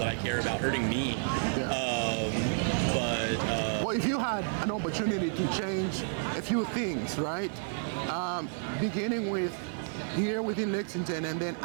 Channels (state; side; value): silent; left; digital silence